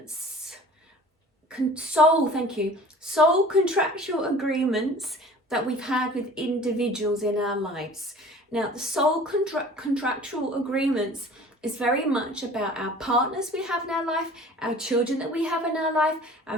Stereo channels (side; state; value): both; normal; correlation 0.46